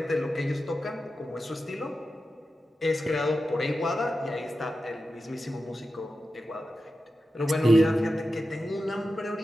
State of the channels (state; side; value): normal; both; correlation 0.92